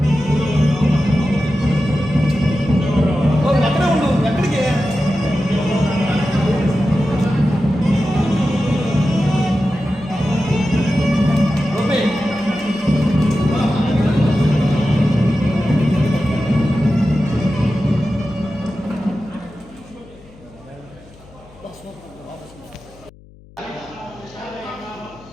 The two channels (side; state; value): left; noise; hum, 24 dB below the sound